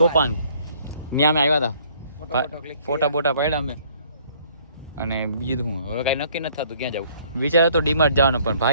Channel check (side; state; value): both; inverted; correlation -0.60